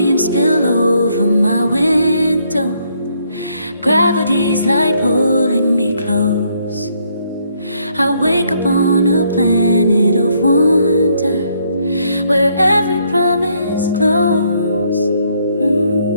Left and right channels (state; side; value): inverted; both; correlation -0.71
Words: spill over my window. Gravity's light pulling me close. I wake up on a planet of wonder, where every promise close.